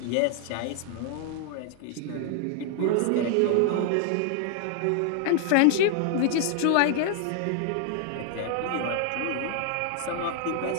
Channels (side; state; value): both; different; correlation 0.00